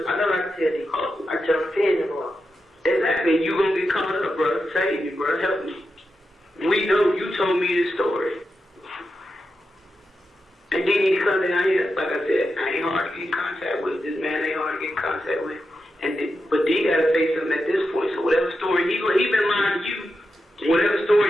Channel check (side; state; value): both; normal; correlation 0.88